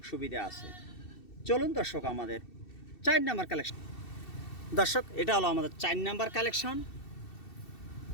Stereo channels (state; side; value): late; right; 2.7 ms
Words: সুবিধা আছে। চলুন দর্শক আমাদের 4 নাম্বার কালেকশন। দর্শক এটা হলো আমাদের 4 নাম্বার কালেকশন।